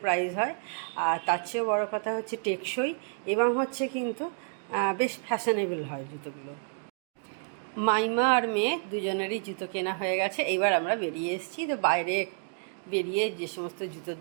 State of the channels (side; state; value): left; silent; 56 dB below the other